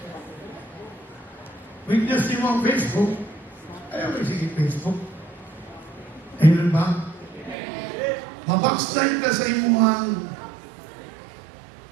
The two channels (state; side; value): drops out; left; at 7.6 s